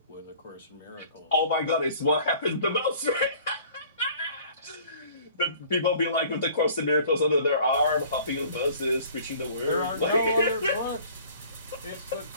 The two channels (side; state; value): both; inverted; correlation -0.51